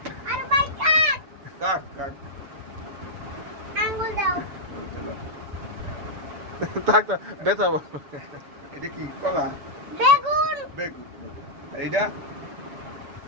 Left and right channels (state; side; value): late; left; 7.0 ms